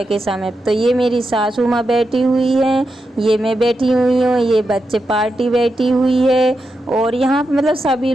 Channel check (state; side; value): normal; both; correlation 0.87